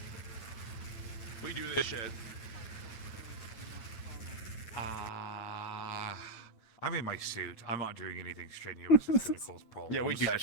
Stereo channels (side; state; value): right; late; 9.1 ms